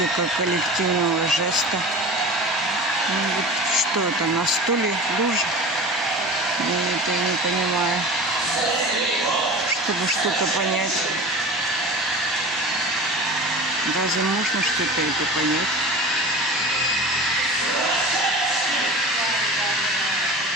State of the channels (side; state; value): both; normal; correlation 0.35